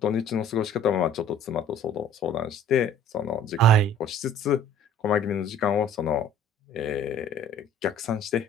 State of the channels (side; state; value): both; normal; correlation 0.52